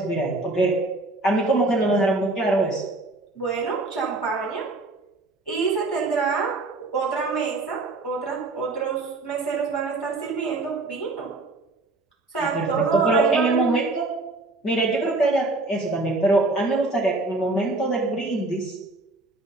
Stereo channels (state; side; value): quieter; left; 3.1 dB